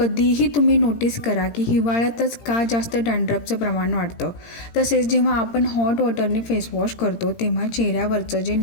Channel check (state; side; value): late; right; 17 ms